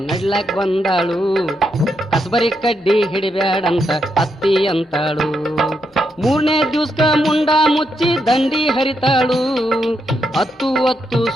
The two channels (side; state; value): both; normal; correlation 0.81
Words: ನಡ್ಲಾಕ್ ಬಂದಾಳು, ಕಸಬರಿ ಕಡ್ಡಿ ಹಿಡಿಬ್ಯಾಡಂತ ಅತ್ತಿ ಅಂತಾಳು. ಮೂರನೇ ದಿವ್ಸಕ ಮುಂಡ ಮುಚ್ಚಿ ದಂಡಿ ಹರಿತಾಳು, ಹತ್ತು